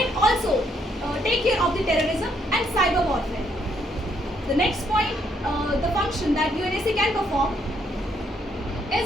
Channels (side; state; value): both; normal; correlation 0.72